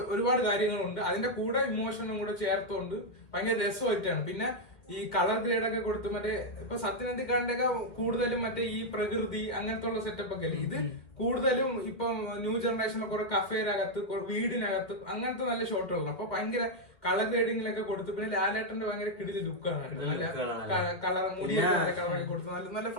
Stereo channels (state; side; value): late; right; 2.5 ms